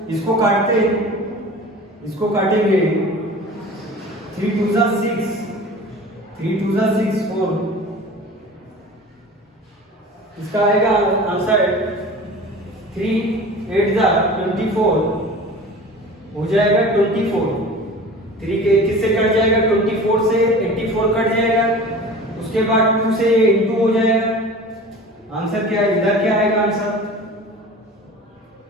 इसको काटते, इसको काटेंगे 3 2 जा 6, 3 2 जा 6 4, इसका आएगा आंसर 3 8 जा 24 हो जाएगा 24। 3 के किससे कट जाएगा? 24 से 84 कट जाएगा, उसके बाद 2 से इंटू हो जाएगा। आंसर क्या है? इधर क्या आएगा आंसर?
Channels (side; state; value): both; normal; correlation 0.39